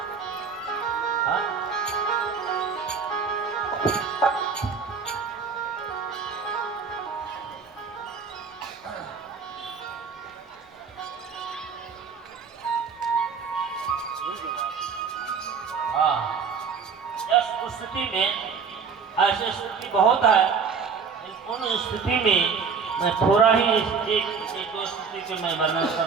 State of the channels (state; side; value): quieter; left; 5.8 dB